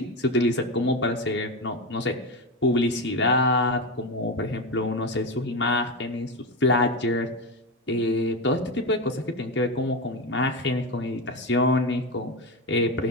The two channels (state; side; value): normal; both; correlation 0.16